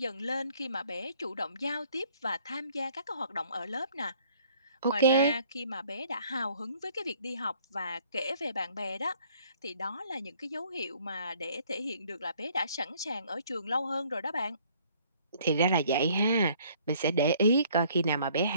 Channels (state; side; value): inverted; both; correlation -0.60